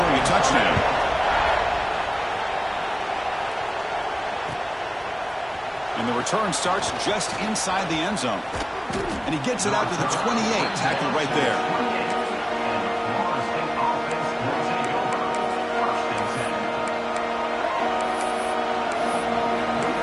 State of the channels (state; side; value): identical; both; correlation 1.00